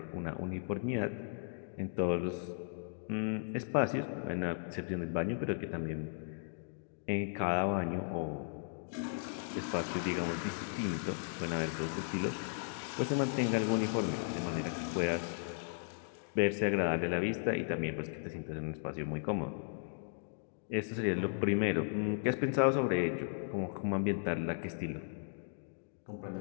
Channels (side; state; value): right; silent; digital silence